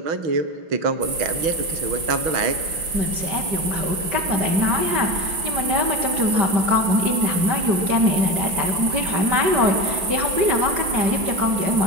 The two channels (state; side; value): late; left; 5.8 ms